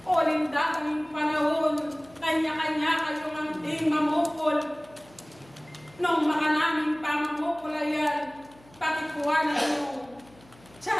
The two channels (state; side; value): noise; left; hum, 26 dB below the sound